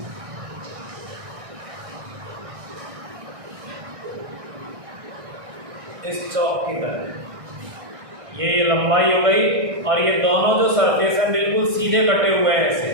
इस चौक की तरह ये लंबाई हो गई, और ये दोनों जो सरफेस है बिल्कुल सीधे कटे हुए हैं ऐसे,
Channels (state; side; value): late; left; 1.6 ms